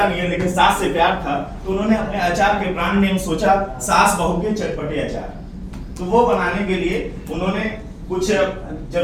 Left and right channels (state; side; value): identical; both; correlation 1.00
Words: नहीं है, लेकिन सास से प्यार था तो उन्होंने अपने अचार के ब्रांड नेम सोचा सास बहू के चटपटे अचार। तो वो बनाने के लिए उन्होंने कुछ